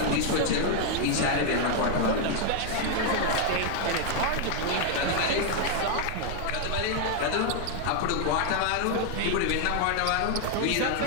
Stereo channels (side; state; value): both; different; correlation 0.00